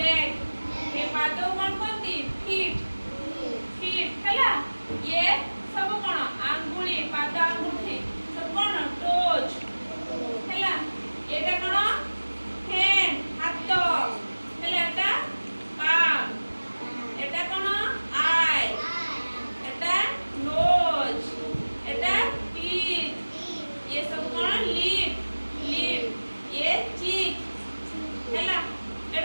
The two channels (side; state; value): both; inverted; correlation -1.00